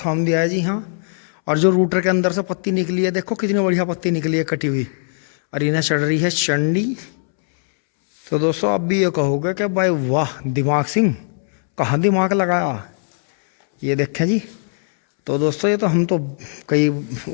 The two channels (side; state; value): right; silent; 66 dB below the other